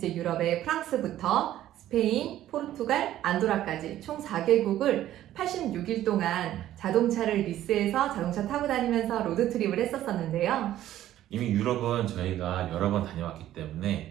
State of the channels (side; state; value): left; quieter; 13.0 dB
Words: 유럽의 프랑스부터 스페인, 포르투갈, 안도라까지 총 4개국을 86일 동안 자동차를 리스해서 자동차 타고 다니면서 로드트립을 했었었는데요. 이미 유럽은 저희가 여러 번 다녀왔기 때문에